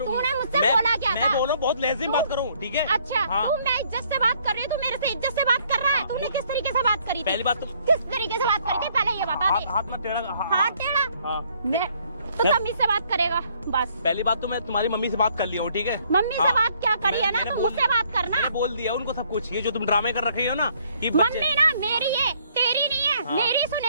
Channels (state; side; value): inverted; both; correlation -0.65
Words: मुझसे बोला क्या था? मैं बोल रहा हूँ, बहुत लहज़े में बात करूँ, ठीक है? अच्छा, तू मैं इज्जत से बात कर रही हूँ, तू मेरे से इज्जत से बात कर रहा है। तूने किस तरीके से बात करी थी? पहली बात तो किस तरीके से बात करी थी, पहले ये बता दे। हाथ में टेढ़ा। हाथ टेढ़ा? हाँ। मैं तो तमीज से बात करेगा बस। पहली बात तो मैं तुम्हारी मम्मी से बात कर लिया हूँ, ठीक है? मम्मी से हाँ। बात क्या करी है ना, मैंने तो बोल मुझसे बात करना। मैंने बोल दिया उनको सब कुछ। ये जो तुम ड्रामे कर रखे हो ना कि मम्मी ना मेरी है, तेरी नहीं है। हाँ। मेरी